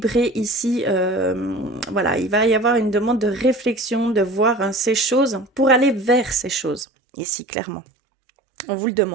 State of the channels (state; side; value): drops out; left; at 6.9 s